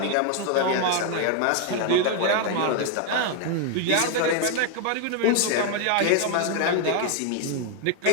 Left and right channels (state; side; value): different; both; correlation 0.01